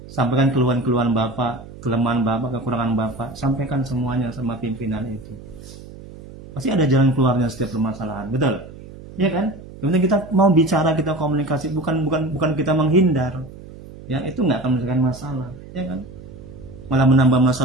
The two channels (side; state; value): right; noise; hum, 16 dB below the sound